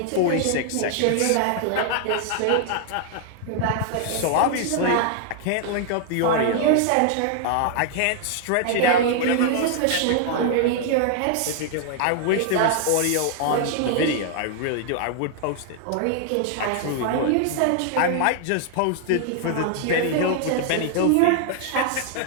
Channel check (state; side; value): different; both; correlation 0.00